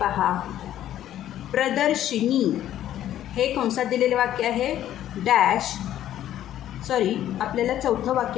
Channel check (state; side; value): quieter; right; 12.0 dB